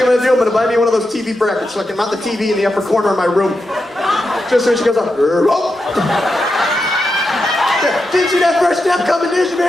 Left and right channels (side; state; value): both; normal; correlation 0.87